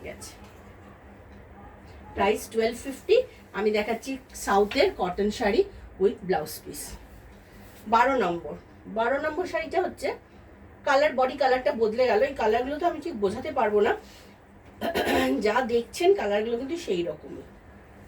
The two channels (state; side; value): identical; both; correlation 1.00